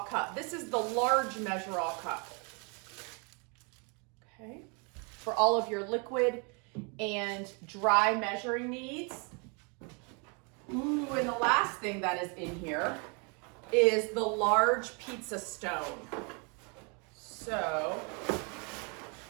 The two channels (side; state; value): left; quieter; 34.6 dB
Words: cup. This is the large measure-all cup. Okay, for all of your liquid and dry measuring needs. Ooh, and the last thing that is in here is the large pizza stone. So